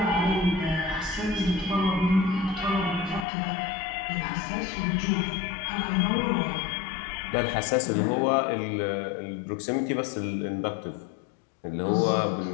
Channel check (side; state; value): right; drops out; at 3.2 s